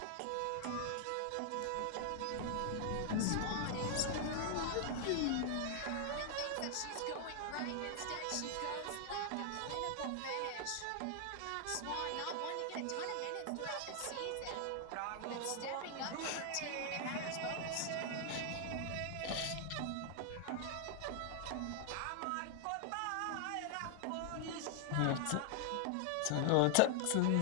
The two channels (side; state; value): both; different; correlation 0.00